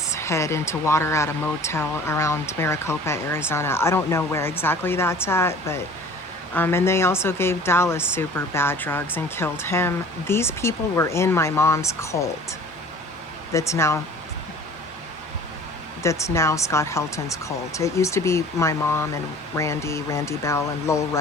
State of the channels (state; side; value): normal; both; correlation 0.46